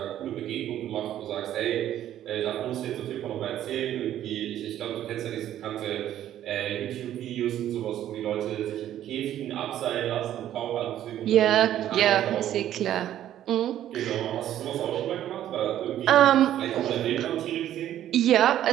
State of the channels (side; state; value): left; quieter; 11.8 dB